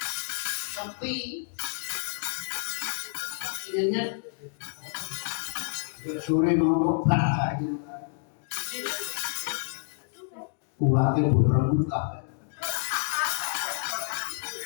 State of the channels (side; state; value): right; silent; digital silence